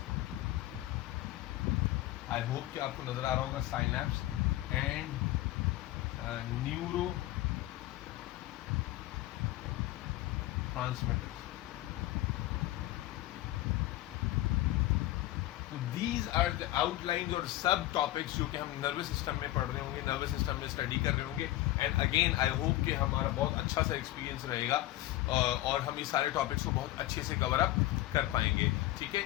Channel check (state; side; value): quieter; right; 16.1 dB